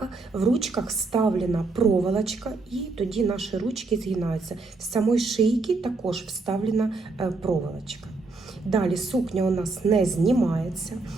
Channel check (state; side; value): quieter; left; 3.7 dB